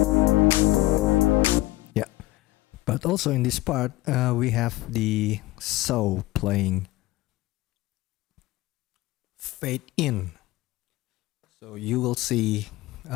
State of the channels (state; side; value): quieter; right; 18.0 dB